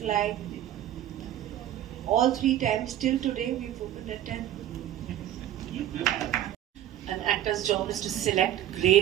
like all 3 times till today we've opened at 10. An actor's job is to select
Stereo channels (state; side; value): quieter; left; 12.1 dB